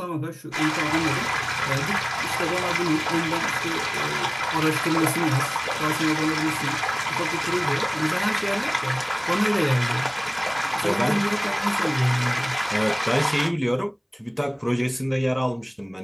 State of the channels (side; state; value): both; identical; correlation 1.00